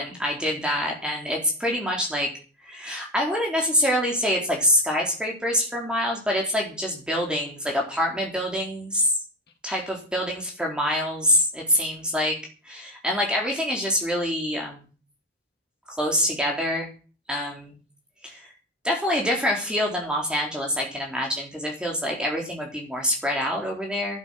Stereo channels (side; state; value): both; normal; correlation 0.24